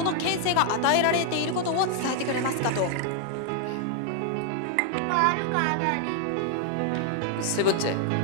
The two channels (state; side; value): different; both; correlation 0.00